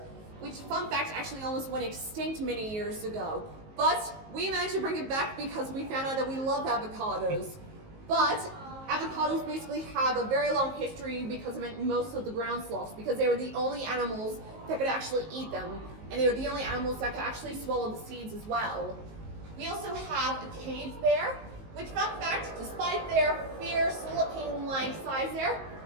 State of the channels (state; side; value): late; left; 19 ms